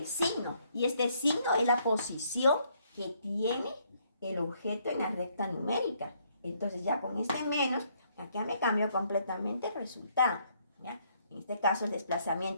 signo. Y este signo es la posición que tiene el objeto en la recta numérica. Entonces ya con este menos, acá me cambió completamente el resultado, ¿ya? En este caso el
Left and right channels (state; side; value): inverted; both; correlation -0.69